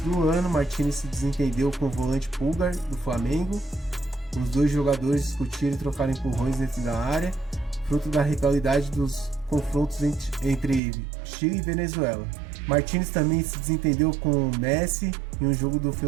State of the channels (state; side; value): drops out; left; at 10.8 s